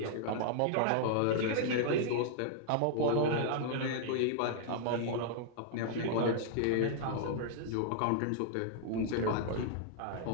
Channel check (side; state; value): both; different; correlation -0.01